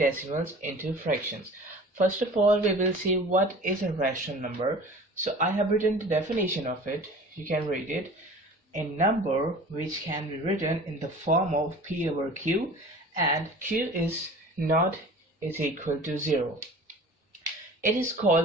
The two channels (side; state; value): both; normal; correlation 0.42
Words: into fractions. First of all, we will see what is a rational number. So I have written the definition of it. You can read it. A number which can be written in the form of P over Q, and Q is equal to 0. It is